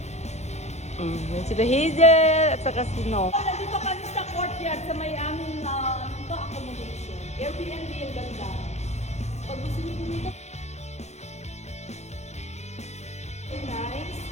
Yan sila Hazel at saka si No. Nandito kami sa courtyard sa may aming accommodation. Airbnb yung ganda. Pag gusto nyo pumunta, very nice.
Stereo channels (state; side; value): late; right; 0.32 ms